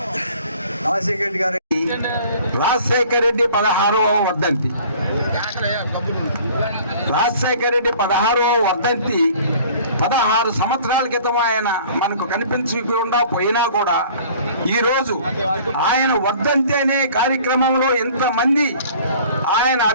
రాజశేఖర రెడ్డి 16వ వర్ధంతి. రాజశేఖర రెడ్డి 16వ వర్ధంతి 16 సంవత్సరాల క్రితం ఆయన మనకు కనిపించకుండా పోయినా కూడా ఈరోజు ఆయన వర్ధంతి అనే కార్యక్రమంలో ఎంతమంది ఆయన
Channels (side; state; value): both; inverted; correlation -0.50